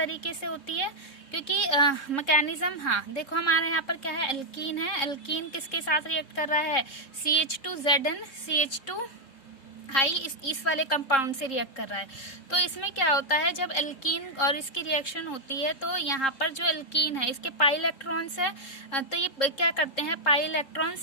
से होती है, क्योंकि मैकेनिज्म, हाँ देखो हमारे यहाँ पर क्या है, एल्कीन है, एल्कीन किसके साथ रिएक्ट कर रहा है, CH2 Zn CH2I इस वाले कंपाउंड से रिएक्ट कर रहा है। तो इसमें क्या होता है, जब एल्कीन और इसकी रिएक्शन होती है तो यहाँ पर जो एल्कीन है इसके पाई इलेक्ट्रॉन्स है, तो ये क्या करते हैं, पाई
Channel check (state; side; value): late; right; 3.7 ms